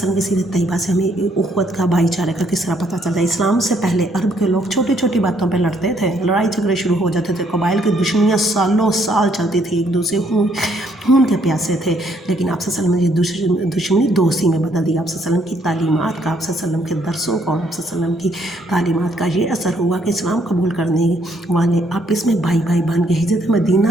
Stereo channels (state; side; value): normal; both; correlation 0.69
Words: علیہ وسلم کی سیرت طیبہ سے ہمیں اخوت کا، بھائی چارے کا کس طرح پتہ چلتا ہے۔ اسلام سے پہلے عرب کے لوگ چھوٹی چھوٹی باتوں پہ لڑتے تھے، لڑائی جھگڑے شروع ہو جاتے تھے، قبائل کی دشمنیاں سالوں سال چلتی تھی، ایک دوسرے خون کے پیاسے تھے۔ لیکن آپ صلی اللہ علیہ وسلم نے یہ دشمنی دوستی میں بدل دی۔ آپ صلی اللہ علیہ وسلم کی تعلیمات کا، آپ صلی اللہ علیہ وسلم کے درسوں کا، اور آپ صلی اللہ علیہ وسلم کی تعلیمات کا یہ اثر ہوا کہ اسلام قبول کرنے والے آپس میں بھائی بھائی بن گئے۔ ہجرت مدینہ